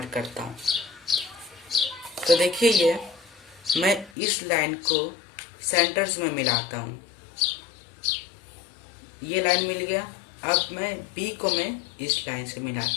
करता हूँ। तो देखिए ये मैं इस लाइन को सेंटर्स में मिलाता हूँ, ये लाइन मिल गया। अब मैं बी को मैं इस लाइन से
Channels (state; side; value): drops out; right; at 4.1 s